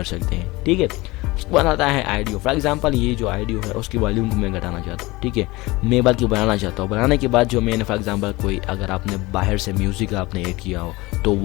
सकते हैं, ठीक है। उसके बाद आता है ऑडियो। फॉर एग्जांपल ये जो ऑडियो है उसकी वॉल्यूम को मैं घटाना चाहता हूँ, ठीक है। मैं बल्कि बनाना चाहता हूँ। बनाने के बाद जो मैंने फॉर एग्जांपल कोई अगर आपने बाहर से म्यूजिक आपने ऐड किया हो तो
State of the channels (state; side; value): quieter; right; 21.6 dB